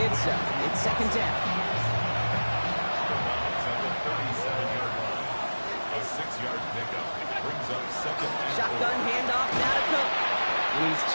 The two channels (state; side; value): inverted; both; correlation -1.00